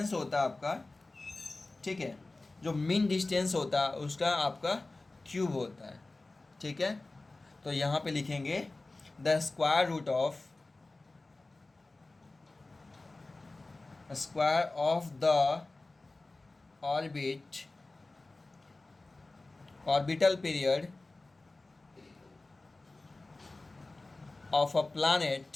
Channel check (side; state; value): right; quieter; 3.1 dB